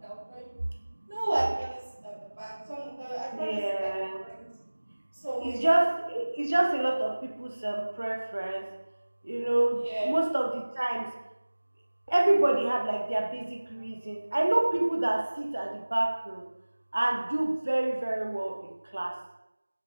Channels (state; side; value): inverted; both; correlation -1.00